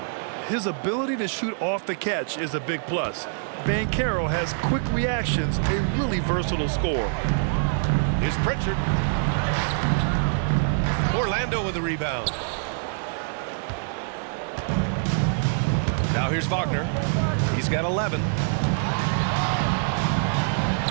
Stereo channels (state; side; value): silent; left; digital silence